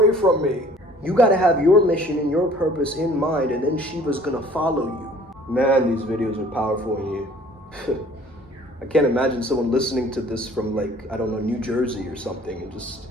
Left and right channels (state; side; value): normal; both; correlation 0.52